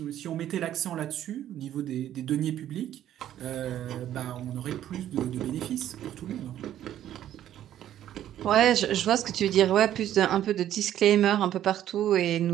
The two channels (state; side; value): quieter; left; 11.7 dB